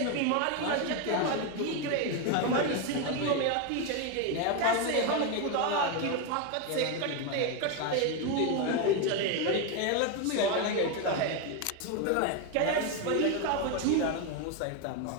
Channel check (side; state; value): both; different; correlation 0.02